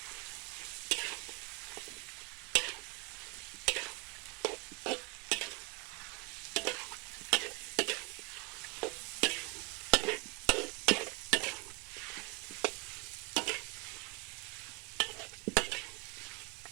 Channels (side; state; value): left; quieter; 26.7 dB